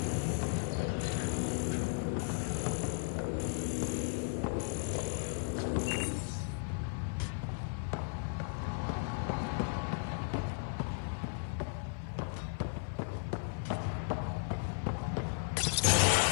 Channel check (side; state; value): right; silent; 54 dB below the other